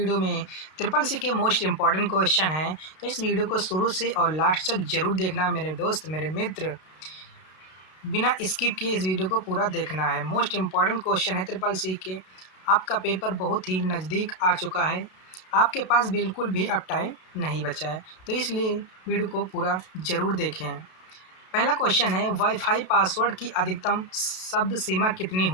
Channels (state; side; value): late; right; 32 ms